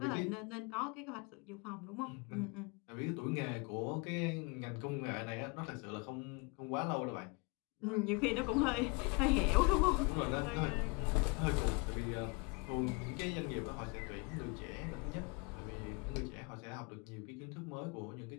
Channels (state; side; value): quieter; right; 30.3 dB